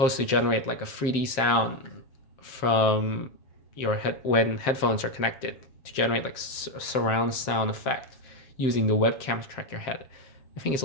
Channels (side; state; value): right; late; 7.6 ms